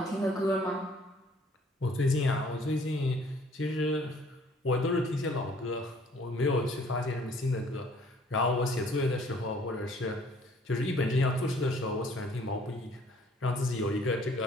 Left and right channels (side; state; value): both; normal; correlation 0.58